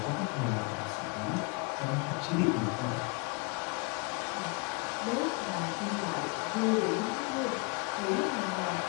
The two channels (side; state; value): right; quieter; 30.7 dB